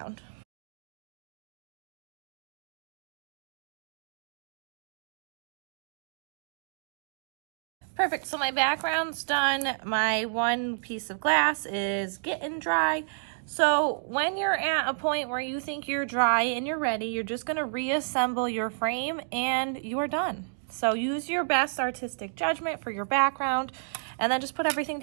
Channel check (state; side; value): silent; left; digital silence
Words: Perfect, so my background's done. My one piece of glass is getting dry. So when you're at a point where you think you're dry and you're ready, you're just gonna reassemble your frame and you're done. So use your best artistic judgment for your background and then just put everything